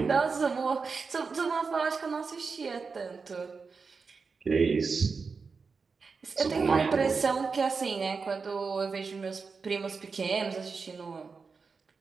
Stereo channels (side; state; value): left; quieter; 4.9 dB